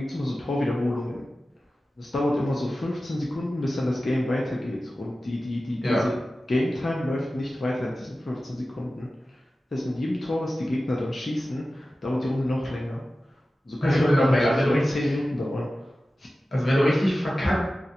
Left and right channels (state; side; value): normal; both; correlation 0.95